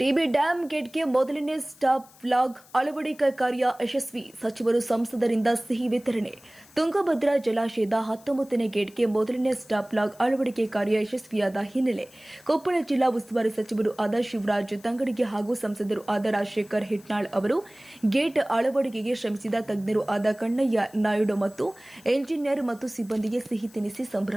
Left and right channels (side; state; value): left; noise; hiss, 25 dB below the sound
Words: dam ಗೇಟ್ಗೆ ಮೊದಲನೇ stop flag ಅಳವಡಿಕೆ ಕಾರ್ಯ ಯಶಸ್ವಿ. ಸಚಿವರು ಸಂಸದರಿಂದ ಸಿಹಿ ವಿತರಣೆ. ತುಂಗಭದ್ರಾ ಜಲಾಶಯದ 19ನೇ ಗೇಟ್ಗೆ ಮೊದಲನೇ ಸ್ಟಾಪ್ ಫ್ಲಾಗ್ ಅಳವಡಿಕೆ ಕಾರ್ಯ ಯಶಸ್ವಿಯಾದ ಹಿನ್ನೆಲೆ ಕೊಪ್ಪಳ ಜಿಲ್ಲಾ ಉಸ್ತುವಾರಿ ಸಚಿವರು ಆದ ಶಿವರಾಜ್ ತಂಗಡಗಿ ಹಾಗೂ ಸಂಸದರು ಆದ ರಾಜಶೇಖರ್ ಹಿಟ್ನಾಳ್ ಅವರು ಗೇಟ್ ಅಳವಡಿಕೆಗೆ ಶ್ರಮಿಸಿದ ತಜ್ಞರು ಆದ ಕಣ್ಣಯ್ಯ ನಾಯ್ಡು ಮತ್ತು ಎಂಜಿನಿಯರ್ ಮತ್ತು ಸಿಬ್ಬಂದಿಗೆ ಸಿಹಿ ತಿನ್ನಿಸಿ